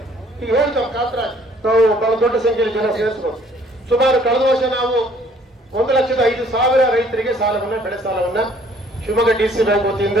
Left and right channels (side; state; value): both; normal; correlation 0.60